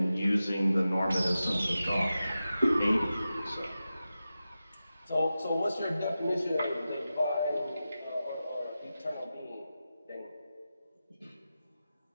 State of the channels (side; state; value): both; inverted; correlation -0.92